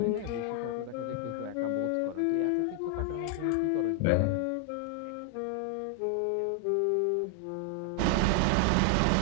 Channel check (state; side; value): different; both; correlation 0.00